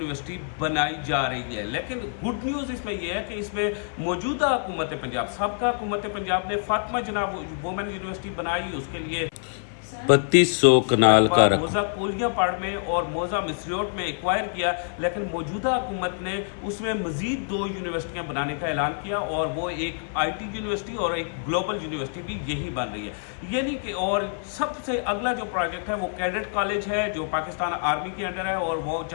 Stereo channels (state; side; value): silent; right; 55 dB below the other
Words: बनाई जा रही है। लेकिन गुड न्यूज़ इसमें यह है कि इसमें मौजूदा हुकूमत पंजाब, सबका हुकूमत पंजाब ने फातिमा जनाब वुमेन यूनिवर्सिटी बनाई। उसके लिए 3200 कनाल का मोजा कोलियां पाड़ में और मोजा मिसरियोट में एक्वायर किया। लेकिन मौजूदा हुकूमत ने उसमें मज़ीद 2 यूनिवर्सिटियां बनाने का ऐलान किया और वो एक IT यूनिवर्सिटी और एक ग्लोबल यूनिवर्सिटी भी यही बन रही है। यानी कि और सबसे अगला जो प्रोजेक्ट है वो कैडेट कॉलेज है जो पाकिस्तान आर्मी के अंडर है और वो